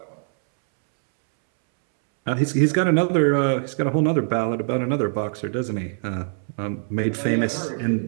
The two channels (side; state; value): left; silent; 64 dB below the other